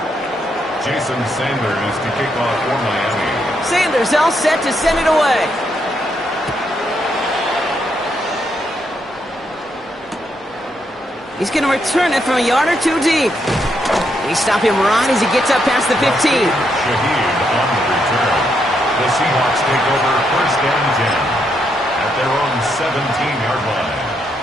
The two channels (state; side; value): normal; both; correlation 0.78